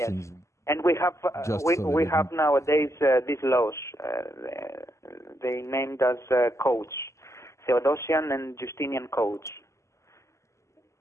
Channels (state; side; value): late; right; 0.14 ms